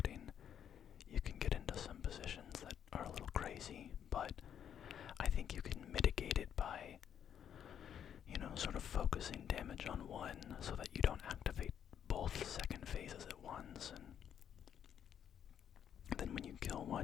you can get into some positions that are a little crazy, but I think you can mitigate it by, sort of focusing damage on one so that you don't activate both second phases at once, and then when you kill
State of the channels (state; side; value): quieter; right; 9.1 dB